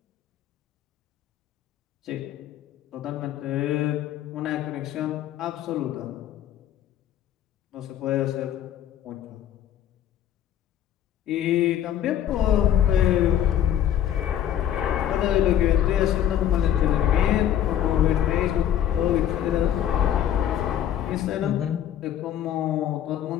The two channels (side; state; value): right; quieter; 10.6 dB